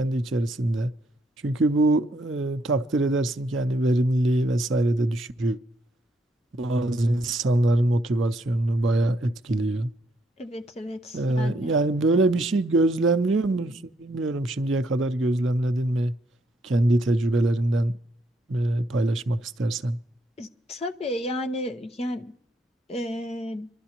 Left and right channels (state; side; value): normal; both; correlation 0.73